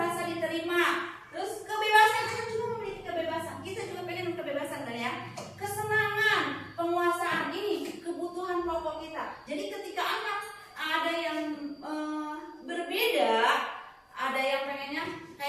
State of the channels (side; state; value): both; identical; correlation 1.00